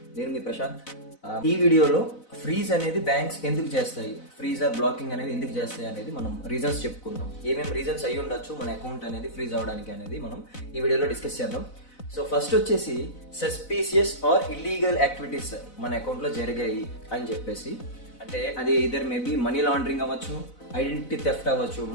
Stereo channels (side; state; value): right; late; 4.0 ms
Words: నేను మీ ప్రశాంత్. ఈ వీడియోలో ఫ్రీజ్ అనేది బ్యాంక్స్ ఎందుకు చేస్తాయి, ఫ్రీజ్ ఆర్ బ్లాకింగ్ అనేది ఎందుకు చేస్తాయి అనేది మనం రీజన్స్ చెప్పుకుందాం. ఏమేమి రీజన్స్ అయ్యి ఉండొచ్చు మన అకౌంట్ అనేది ఫ్రీజ్ అవ్వడానికి అనేది మనం ఈ వీడియోలో డిస్కస్ చేద్దాం. సో ఫస్ట్ వచ్చేసి సస్పీషియస్ ఆర్ ఇల్లీగల్ యాక్టివిటీస్ మన అకౌంట్లో జరిగాయి అని చెప్పేసి, అంటే అది ఇదర్ మేబీ మనీ లాండరింగ్ అవ్వచ్చు, ఐడెంటిటీ థెఫ్ట్ అవ్వచ్చు,